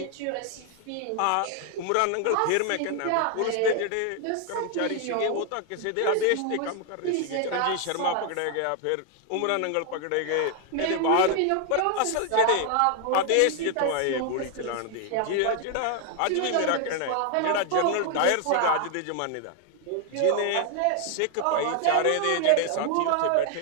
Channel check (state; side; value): different; both; correlation 0.00